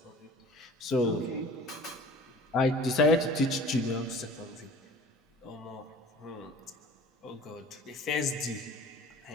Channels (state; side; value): normal; both; correlation 0.44